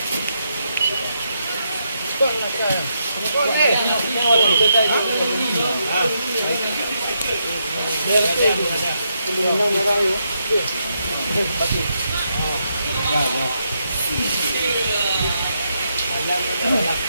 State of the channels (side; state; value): both; inverted; correlation -0.80